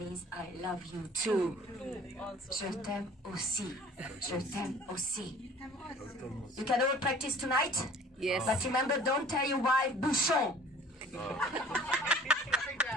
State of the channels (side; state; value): both; normal; correlation 0.49